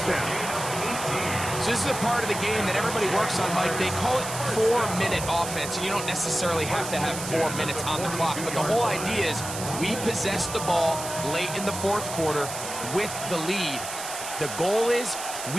down. So this is a part of the game that everybody works on, Mike. They call it 4-minute offense. And you don't necessarily have to have 4 minutes on the clock. But the whole idea is we possess the ball late in the fourth quarter with the lead. The goal is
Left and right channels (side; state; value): right; noise; hiss, 8 dB below the sound